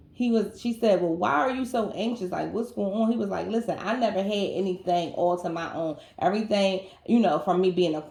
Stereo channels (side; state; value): both; identical; correlation 1.00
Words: She said, well, why are you so anxious? Like, what's going on? He was like, listen, I never had anything all to my own. Everything, from me being a